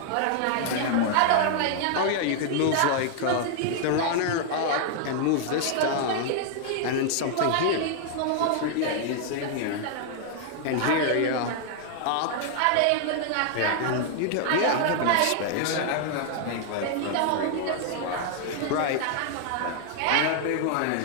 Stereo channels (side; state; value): both; different; correlation 0.00